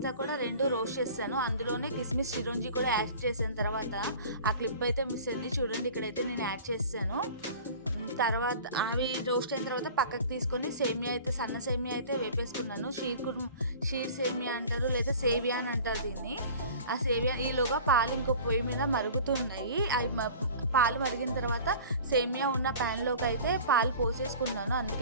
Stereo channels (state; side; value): inverted; both; correlation -0.42